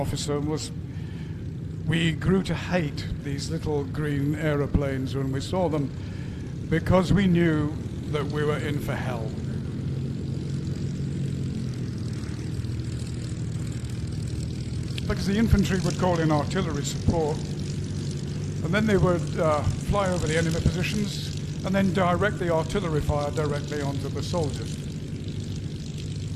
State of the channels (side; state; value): both; identical; correlation 1.00